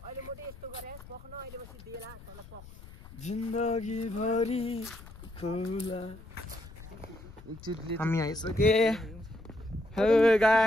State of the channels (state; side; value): noise; left; rumble, 18 dB below the sound